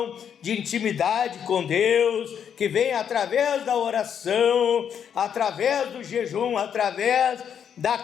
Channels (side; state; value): right; quieter; 8.2 dB